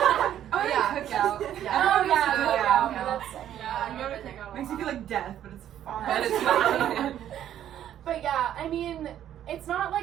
yeah, cookout. Oh yeah, yeah, cookout. that's you gotta pick out Makes me feel like death, but it's fun. But it's fun. But yeah, I mean, it's not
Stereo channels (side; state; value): left; quieter; 11.0 dB